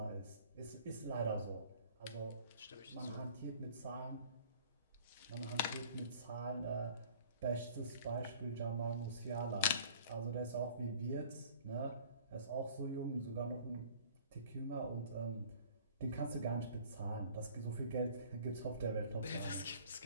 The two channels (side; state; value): both; inverted; correlation -0.49